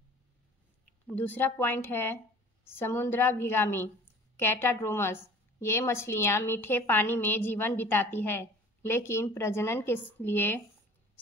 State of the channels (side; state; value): both; normal; correlation 0.46